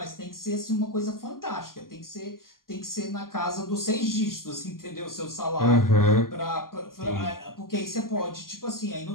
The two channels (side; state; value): right; late; 0.91 ms